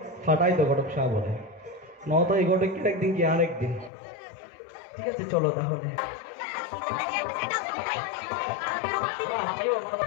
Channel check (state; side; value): drops out; right; at 3.9 s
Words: ফাটাই তো ঘটক সাহ বলে, নয়তো এই ঘটক কি একদিন কি আর একদিন। ঠিক আছে, চলো তাহলে।